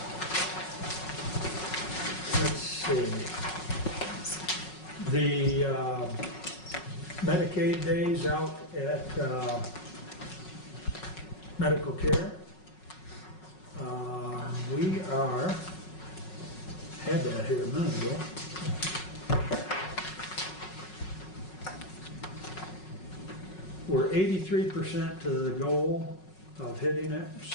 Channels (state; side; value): late; right; 5.4 ms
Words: let's see. The Medicaid days out at medical care. We had that here a minute ago. We're 83% to the goal of hitting it,